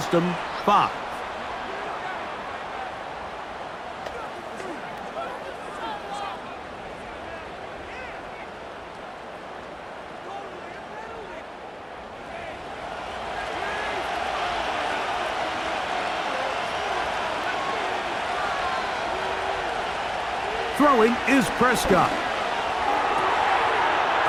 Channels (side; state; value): both; identical; correlation 1.00